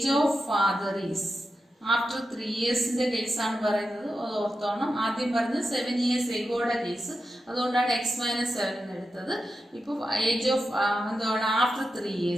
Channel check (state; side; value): normal; both; correlation 0.89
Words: of father is after 3 yearsന്റെ കേസാണ് പറയുന്നത്. അത് ഓർത്തോണം. ആദ്യം പറഞ്ഞത് 7 years എഗോയുടെ കേസ്, അതുകൊണ്ടാണ് എക്സ് മൈനസ് 7 എന്ന് എടുത്തത്. ഇപ്പോൾ ഏജ് ഓഫ് എന്താണ്? After 3